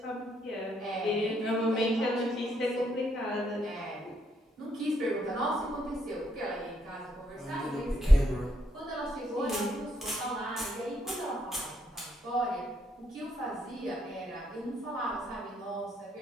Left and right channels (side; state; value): both; normal; correlation 0.74